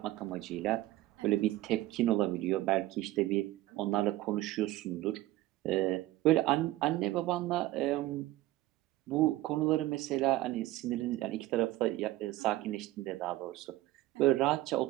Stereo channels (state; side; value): quieter; left; 16.7 dB